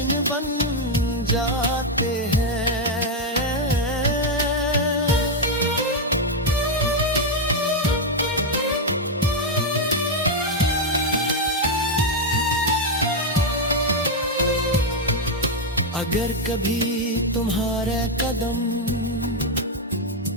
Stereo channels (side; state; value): both; normal; correlation 0.02